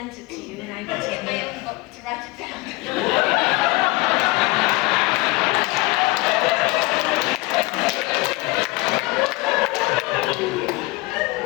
it to you, and I went to get my own book to write it down.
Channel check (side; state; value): right; quieter; 22.9 dB